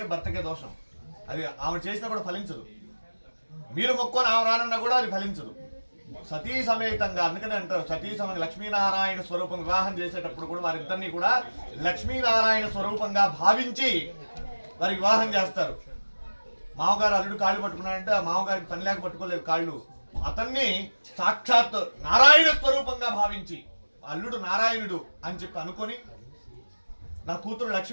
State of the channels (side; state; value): both; inverted; correlation -1.00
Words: భర్తకే దోషం, అది ఆమె చేసినా కూడా ఫలించదు. మీరు మొక్కుని ఆమె రానన్నా కూడా అది ఫలించదు. సతీ సమేతంగా, అందుకని అంటారు సతీ సమేత లక్ష్మీనారాయణ స్వరూపం వివాహం చేసేటప్పుడు కూడా వారిద్దరినీ కూడా లక్ష్మీనారాయణ స్వరూపంగా భావించి వారి వివాహం చేస్తారు. మామగారు అల్లుడు కాళ్ళు పట్టుకున్నాడంటే ఆ మామగారికి పని లేక పట్టుకోలేదు కాళ్ళు, అతన్ని సాక్షాత్ నారాయణ స్వరూపంగా భావించి అల్లుడు నారాయణుడు అని చెప్పి అనుకొని నా కూతురు